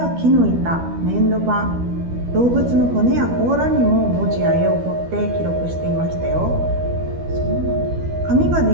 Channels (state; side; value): late; left; 12 ms